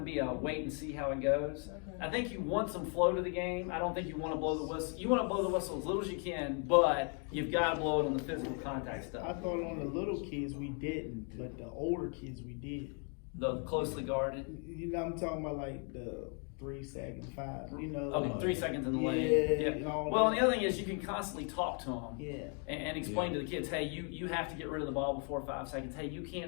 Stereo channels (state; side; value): quieter; right; 39.8 dB